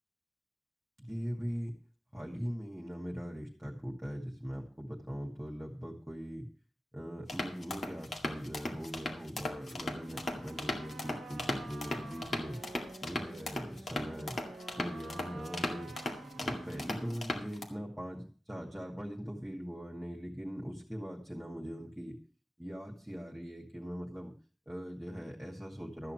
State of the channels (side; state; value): both; normal; correlation 0.93